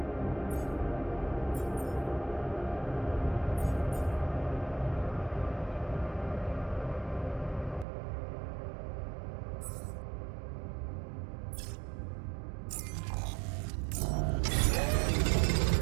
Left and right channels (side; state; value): left; drops out; at 7.9 s